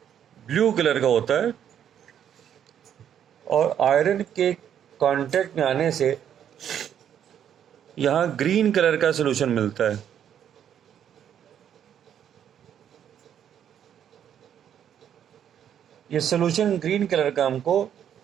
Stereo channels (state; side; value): quieter; left; 9.4 dB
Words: ब्लू कलर का होता है और आयरन के कांटेक्ट में आने से यहाँ ग्रीन कलर का सॉल्यूशन मिलता है। ये सॉल्यूशन ग्रीन कलर का हमको